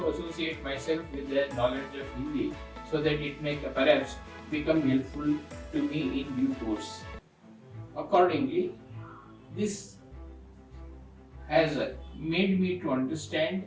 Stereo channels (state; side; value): identical; both; correlation 1.00